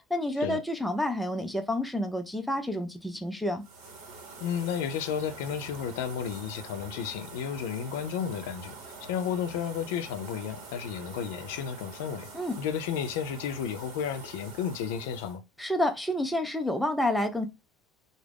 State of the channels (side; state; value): right; quieter; 3.3 dB